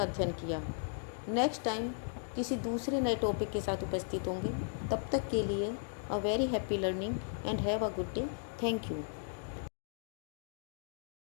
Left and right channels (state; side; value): silent; right; digital silence